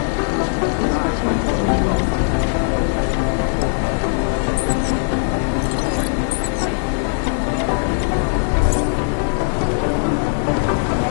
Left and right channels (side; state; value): right; silent; digital silence